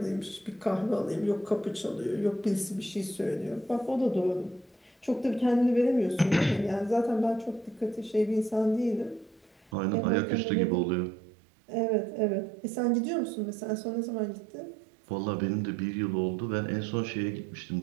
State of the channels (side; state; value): left; drops out; at 9.7 s